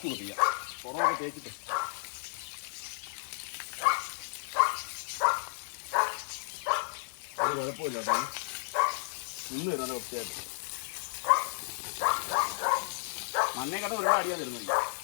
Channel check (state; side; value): silent; right; digital silence